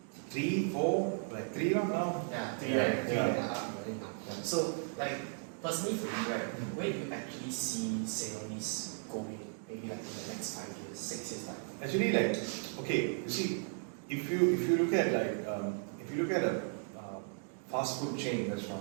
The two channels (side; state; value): left; silent; 54 dB below the other